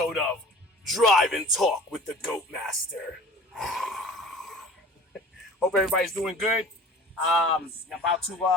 of Drive and Talk with the Goatmaster. Hope everybody's doing good. About to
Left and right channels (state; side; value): normal; both; correlation 0.43